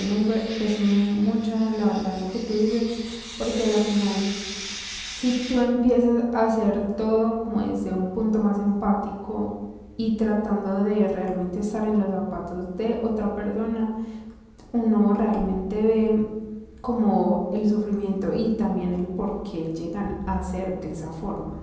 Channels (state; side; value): identical; both; correlation 1.00